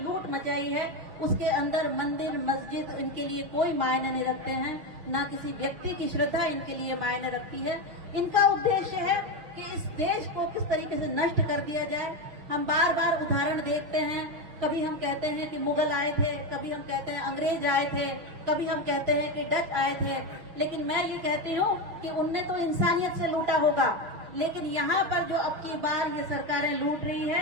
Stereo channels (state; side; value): late; left; 6.0 ms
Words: मचाई है उसके अंदर मंदिर, मस्जिद इनके लिए कोई मायने नहीं रखते हैं, ना किसी व्यक्ति की श्रद्धा इनके लिए मायने रखती है। इनका उद्देश्य है कि इस देश को किस तरीके से नष्ट कर दिया जाए। हम बार बार उदाहरण देखते हैं, कभी हम कहते हैं कि मुगल आए थे, कभी हम कहते हैं अंग्रेज आए थे, कभी हम कहते हैं कि डच आए थे, लेकिन मैं ये कहती हूँ कि उनने तो इंसानियत से लूटा होगा, लेकिन यहाँ पर जो अब की बार ये सरकारें लूट रही है,